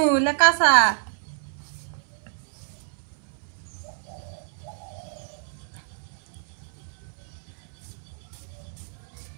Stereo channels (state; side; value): silent; left; 60 dB below the other